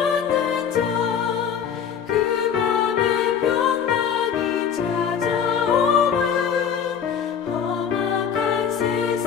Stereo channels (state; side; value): quieter; right; 7.8 dB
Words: 자, 그 맘에 평강이 찾아오면 험악한